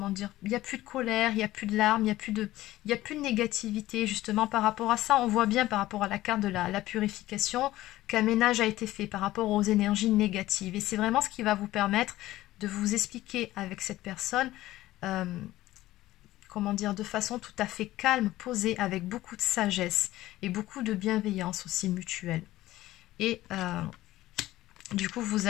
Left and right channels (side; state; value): right; quieter; 16.0 dB